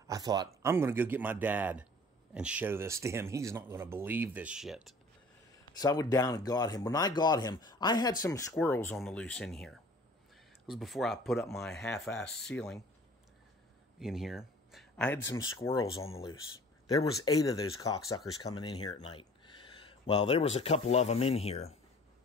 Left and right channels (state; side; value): normal; both; correlation 0.48